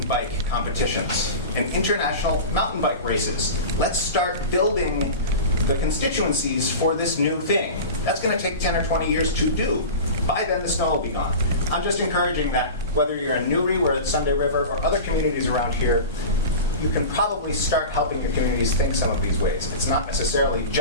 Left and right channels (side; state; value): both; inverted; correlation -0.30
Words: bike competitions and international mountain bike races. Let's start building the constituencies for this new thing. That's going to take 10 or 20 years to do. By then, the snow will be gone. I'm just encouraging that whether you're in Newry, where it's Sunday River, or other communities around here, you can probably start helping your communities think some of these ways. It's not necessarily